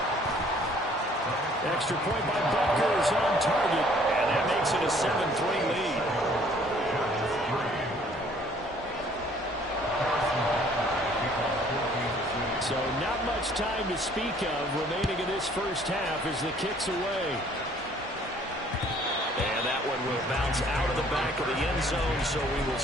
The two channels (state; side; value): normal; both; correlation 0.58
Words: Extra point by Butker is on target, and that makes it a 7-3 lead. So not much time to speak of remaining in this first half as the kick's away. And that one will bounce out of the back of the end zone, so we will